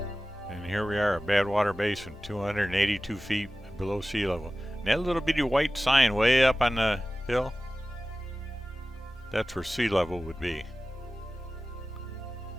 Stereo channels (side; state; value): both; normal; correlation 0.96